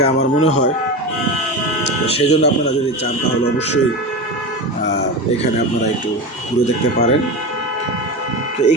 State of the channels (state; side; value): normal; both; correlation 0.23